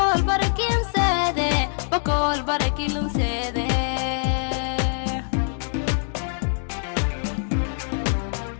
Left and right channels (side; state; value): right; silent; digital silence